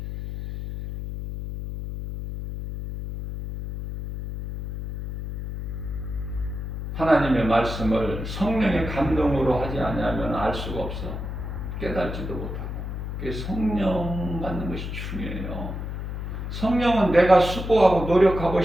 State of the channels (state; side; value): noise; left; hum, 6 dB below the sound